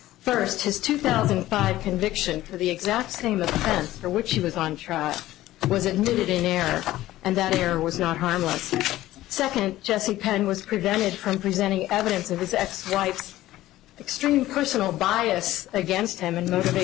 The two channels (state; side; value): quieter; right; 15.4 dB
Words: his 2005 conviction for the exact same offense for which he was on trial was admitted in error, and that error was not harmless. Second, Jesse Penn was prevented from presenting evidence of his ex-wife's extreme personal bias against him and